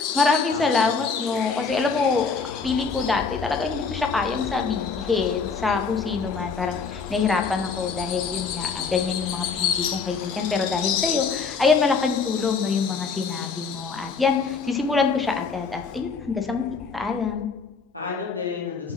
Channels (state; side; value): quieter; right; 5.0 dB